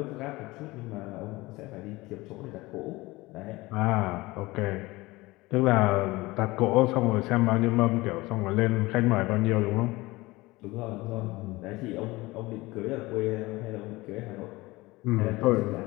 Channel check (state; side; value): quieter; right; 21.0 dB